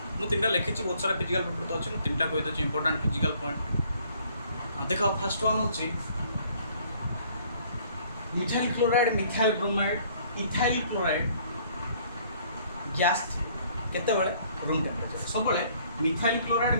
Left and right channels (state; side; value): inverted; both; correlation -0.60